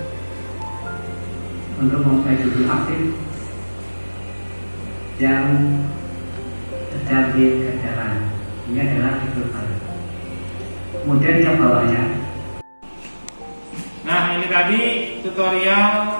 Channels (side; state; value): both; inverted; correlation -1.00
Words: untuk memulai judul aktif yang sedang dikerjakan. Ini adalah judul baru. Kemudian yang bawahnya. Nah, ini tadi